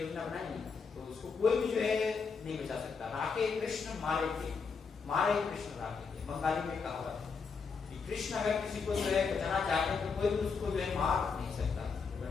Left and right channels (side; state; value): right; quieter; 5.3 dB